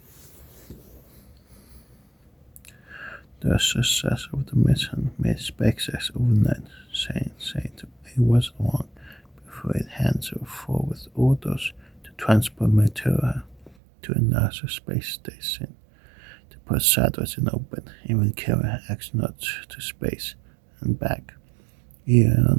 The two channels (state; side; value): drops out; left; at 13.8 s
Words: The success of the mission made SpaceX overnight, saying it was long before it hands forward orders to transport material to a NASA space station to put satellites in orbit, even carry astronauts to space and back.